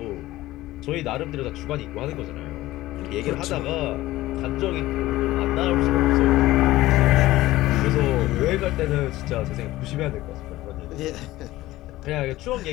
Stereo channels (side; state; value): right; quieter; 16.8 dB